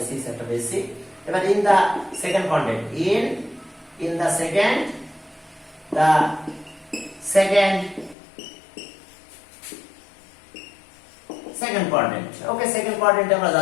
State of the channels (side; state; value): right; drops out; at 8.2 s